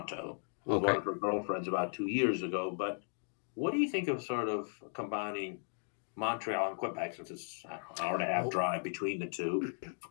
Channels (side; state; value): right; silent; 54 dB below the other